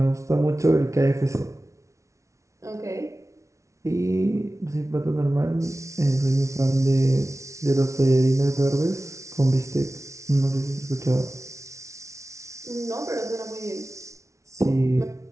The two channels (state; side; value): late; left; 0.14 ms